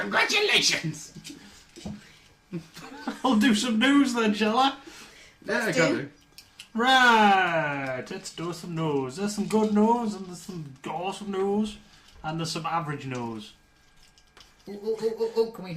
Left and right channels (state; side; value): identical; both; correlation 1.00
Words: I'll do some news then, shall I? Yeah, I do. can do. Right, let's do some news. There's some good news, and there's some awesome news, and there's some average news. Oh, can we